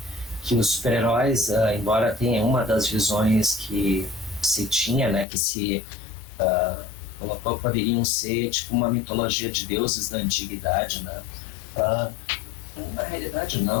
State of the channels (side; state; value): right; drops out; at 5.2 s